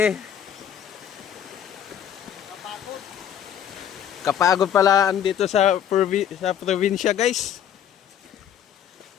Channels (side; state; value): right; quieter; 9.4 dB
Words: Kapagod pala andito sa probinsya guys.